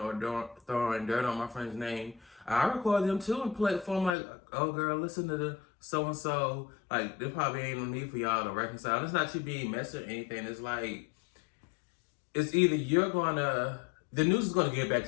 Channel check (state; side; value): drops out; right; at 4.2 s